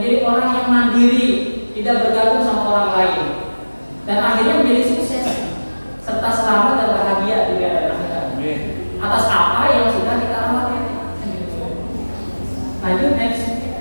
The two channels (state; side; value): inverted; both; correlation -1.00